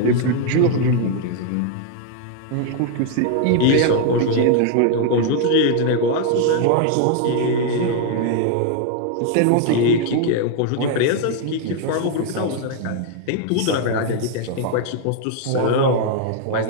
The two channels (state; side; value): different; both; correlation 0.00